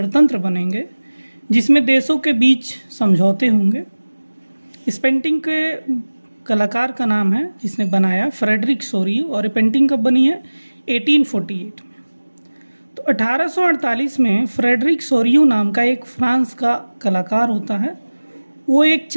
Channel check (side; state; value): both; inverted; correlation -1.00